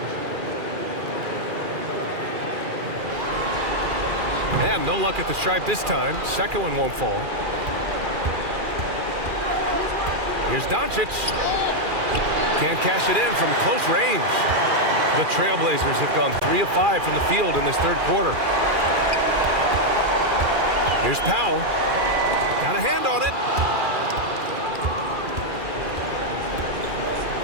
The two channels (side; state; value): left; late; 2.4 ms